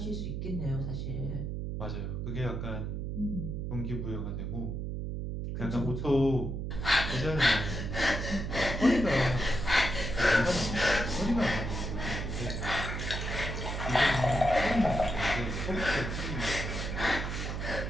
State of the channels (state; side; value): noise; right; hum, 3 dB below the sound